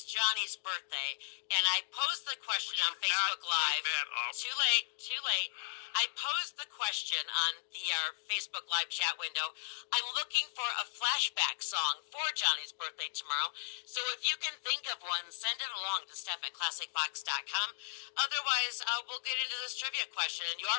Johnny's birthday, and I posed the question on Facebook Live. Too late. I posed the question on the Facebook Live chat window. I'm looking for a flashback song for Johnny's birthday tomorrow. So if you can think of one, send it along to Steph@ClassicFox.com. Otherwise, we'll get into this trivia question. And you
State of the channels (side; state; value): right; silent; digital silence